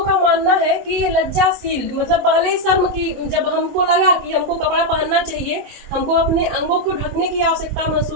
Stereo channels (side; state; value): left; late; 22 ms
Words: का मानना है कि ये लज्जाशील मतलब पहले ही शर्म की, जब हमको लगा कि हमको कपड़ा पहनना चाहिए, हमको अपने अंगों को ढकने की आवश्यकता